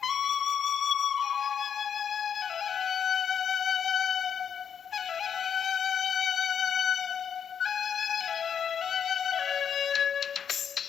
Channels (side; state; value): right; quieter; 7.8 dB